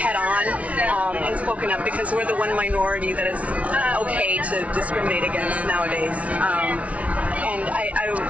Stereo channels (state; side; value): late; left; 0.066 ms